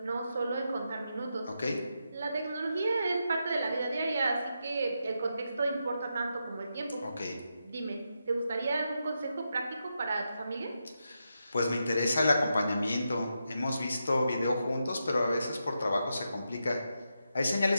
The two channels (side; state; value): both; inverted; correlation -0.85